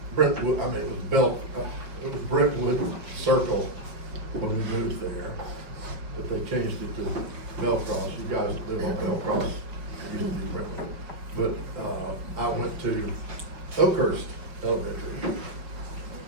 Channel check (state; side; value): late; left; 5.3 ms